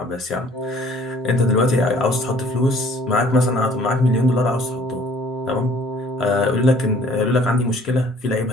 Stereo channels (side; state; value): both; normal; correlation 0.55